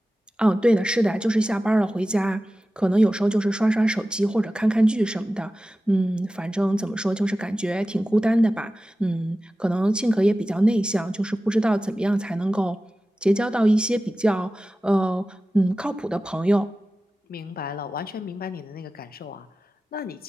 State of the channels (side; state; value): both; normal; correlation 0.95